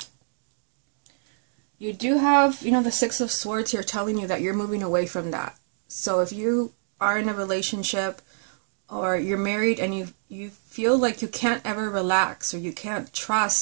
You do have, you know, the Six of Swords here telling you that you're moving away from that. So if you are in a relationship or you're married and you feel like you can't ever relax, or you can't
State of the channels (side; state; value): left; silent; digital silence